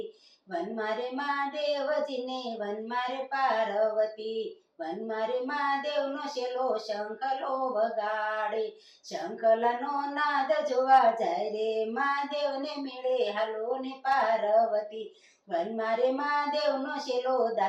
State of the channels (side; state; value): both; identical; correlation 1.00